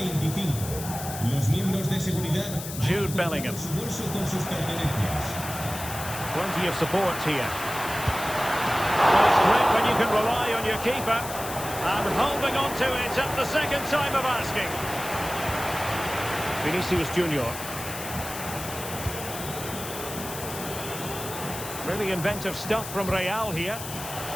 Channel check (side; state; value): left; noise; hiss, 9 dB below the sound